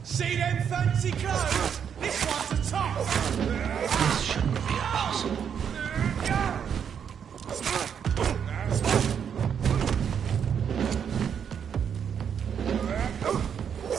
See them fancy clothes? This one's a top! This shouldn't be possible.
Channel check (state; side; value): quieter; left; 7.8 dB